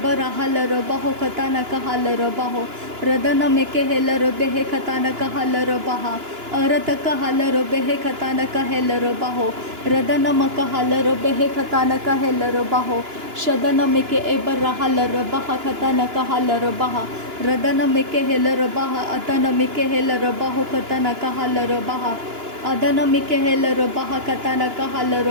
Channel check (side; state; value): left; late; 2.9 ms